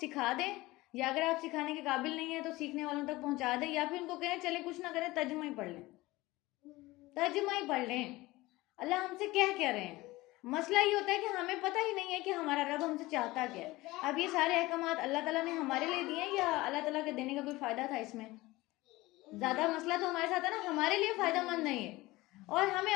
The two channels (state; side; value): quieter; right; 19.8 dB